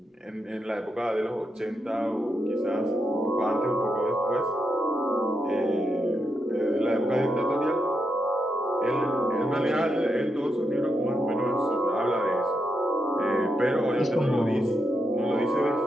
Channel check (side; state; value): both; normal; correlation 0.83